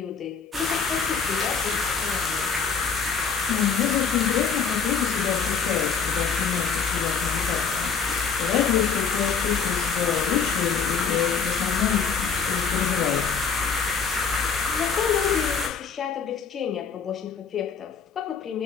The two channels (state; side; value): quieter; right; 5.9 dB